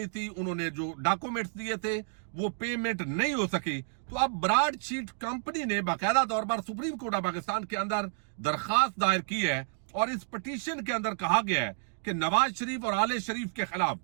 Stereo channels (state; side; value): silent; left; digital silence